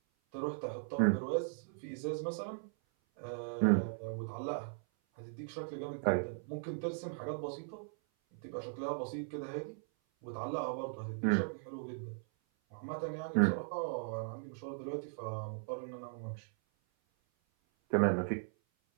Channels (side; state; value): left; silent; 52 dB below the other